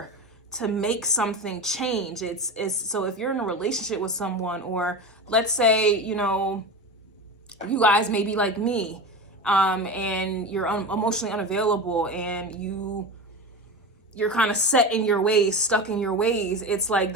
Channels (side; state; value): both; normal; correlation 0.26